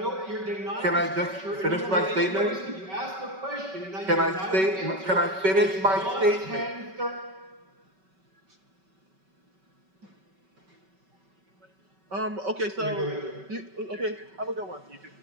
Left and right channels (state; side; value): late; left; 5.2 ms